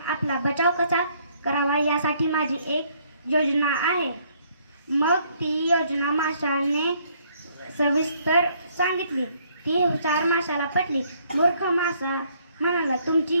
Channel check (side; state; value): both; inverted; correlation -0.66